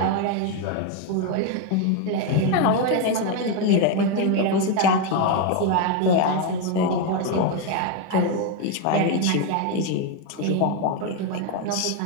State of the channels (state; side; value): different; both; correlation 0.02